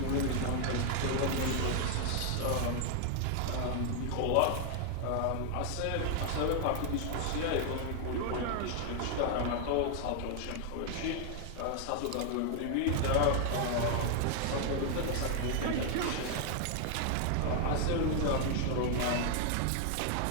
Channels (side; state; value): both; different; correlation 0.00